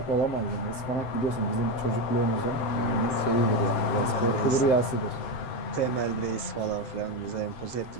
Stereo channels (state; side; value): late; right; 7.8 ms